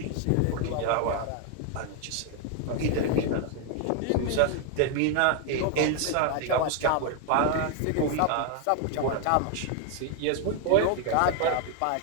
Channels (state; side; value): different; both; correlation 0.00